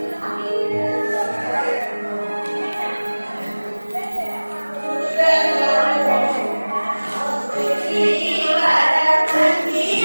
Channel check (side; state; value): both; inverted; correlation -1.00